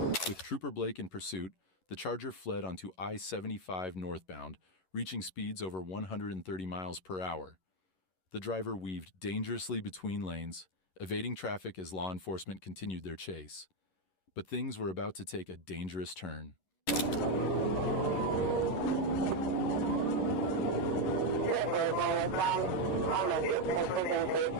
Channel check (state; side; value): late; right; 11 ms